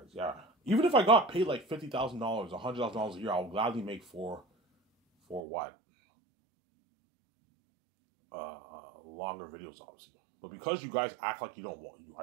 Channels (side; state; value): left; drops out; at 5.4 s